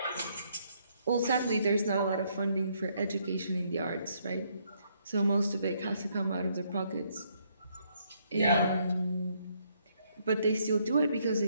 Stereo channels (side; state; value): both; inverted; correlation -0.71